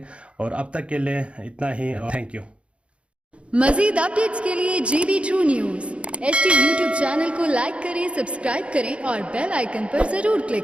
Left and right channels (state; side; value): late; left; 0.060 ms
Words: और अब तक के लिए इतना ही, थैंक यू। मज़ीद अपडेट्स के लिए GB2 news HD YouTube channel को लाइक करें, सब्सक्राइब करें और बेल आइकन पर ज़रूर